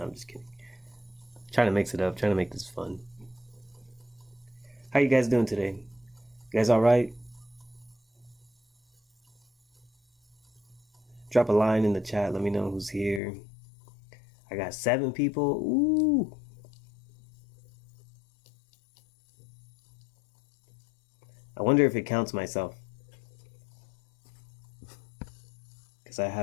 I'm just kidding. Trying to mix it up, trying to make this fun. How you guys doing today? You guys alright? Drop a line in the chat, let me know who's here. I got 7 people. Ooh. I wonder if it counts myself, because I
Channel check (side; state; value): right; drops out; at 13.2 s